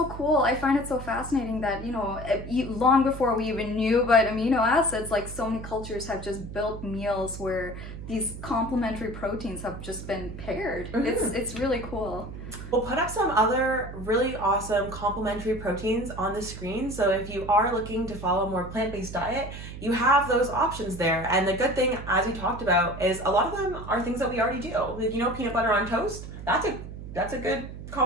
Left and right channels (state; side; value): noise; right; hum, 11 dB below the sound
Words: cool. I find it so fascinating that, you know, long before we even knew about amino acids, like so many cultures have just built meals where these complementary proteins have just been paired. It's really cool. We'll put up some other really awesome complementary proteins on the screen. So if you are looking to follow a more plant-based diet, you have those options there. And the good thing, as we talked about, is a lot of them are things that we already do. Like, you know, peanut butter on toast, that's a good